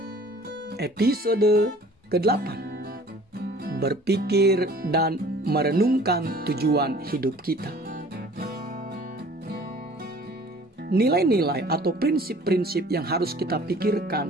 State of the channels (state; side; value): normal; both; correlation 0.50